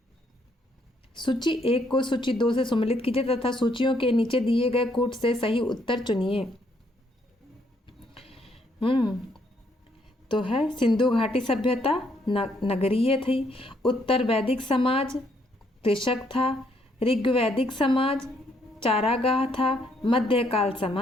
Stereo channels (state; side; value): normal; both; correlation 0.71